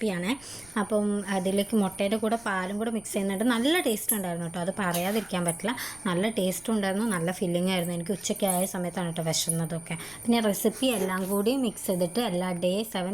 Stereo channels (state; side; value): noise; left; rumble, 24 dB below the sound